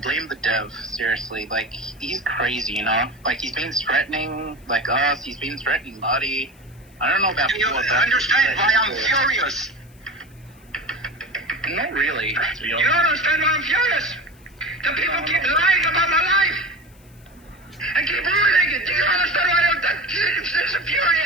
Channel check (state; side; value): noise; left; hiss, 29 dB below the sound